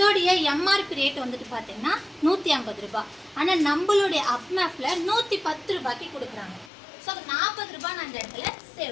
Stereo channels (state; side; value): drops out; right; at 6.7 s